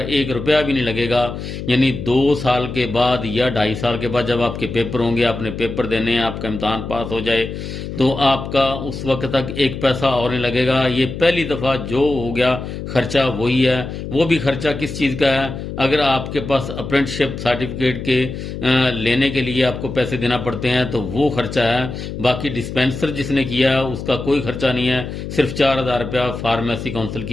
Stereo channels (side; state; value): left; noise; hum, 7 dB below the sound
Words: 1 रुपया भी नहीं लगेगा। यानी 2 साल के बाद या 2.5 साल के बाद जब आपके पेपर होंगे, आपने पेपर देने हैं, आपका इम्तहान पास हो जाए, तो आपका उस वक्त तक 1 पैसा और नहीं लगेगा। ये पहली दफ़ा जो हो गया खर्चा वही है। वो भी खर्चा किस चीज़ का है? अगर आपके पास अप्रेंटिसशिप सर्टिफिकेट के लेने के लिए आपको पैसे देना पड़ते हैं तो वो खर्चा है। बाकी डिस्पेंसर जिसने किया उसका कोई खर्चा नहीं है, सिर्फ 4,000 रुपया फार्मेसी काउंसिल